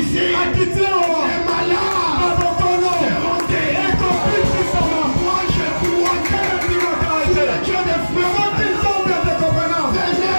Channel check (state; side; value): inverted; both; correlation -1.00